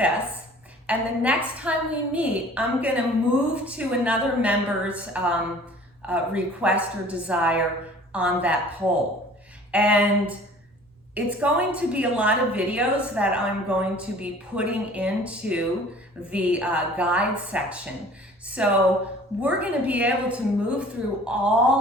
and the next time we meet, I'm gonna move to another member's request or desire on that poll. And it's going to be a lot of videos that I'm going to be putting into the guide section. So we're gonna be able to move through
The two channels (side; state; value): both; normal; correlation 0.48